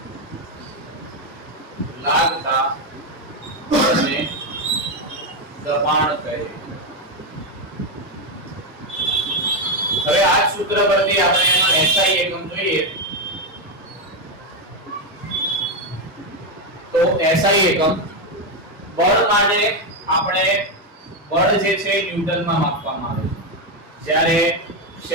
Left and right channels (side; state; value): both; normal; correlation 0.07